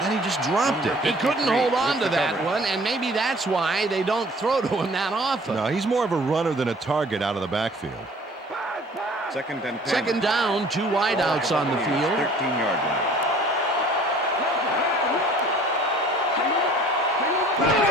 then he just dropped it. He couldn't hold on to that one, and maybe that's why they don't throw to him that often. No, he's more of a runner than a target out of the backfield. Second and 10. Second down, two wideouts on the field. 13-yard line.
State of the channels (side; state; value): both; normal; correlation 0.51